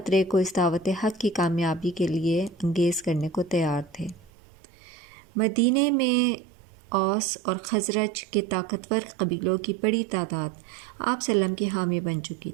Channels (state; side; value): drops out; left; at 4.3 s